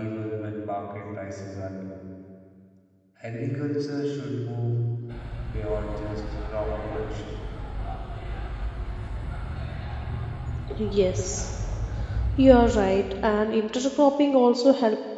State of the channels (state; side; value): identical; both; correlation 1.00